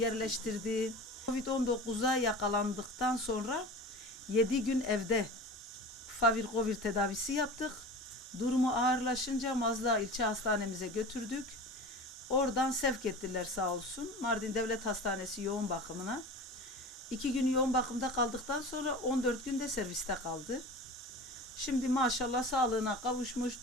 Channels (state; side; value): normal; both; correlation 0.34